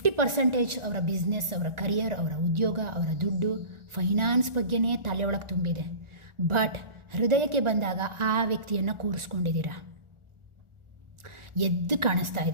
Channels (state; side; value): late; left; 1.4 ms